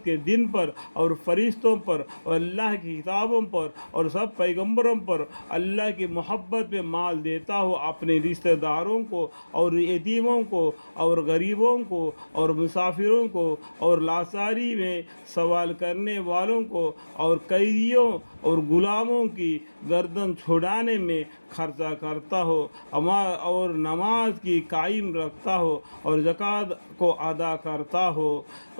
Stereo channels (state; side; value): inverted; both; correlation -1.00